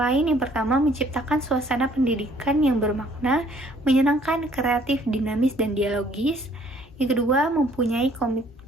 yang pertama menciptakan suasana pendidikan yang bermakna, menyenangkan, kreatif, dinamis, dan dialogis. Yang kedua, mempunyai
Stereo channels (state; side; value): normal; both; correlation 0.60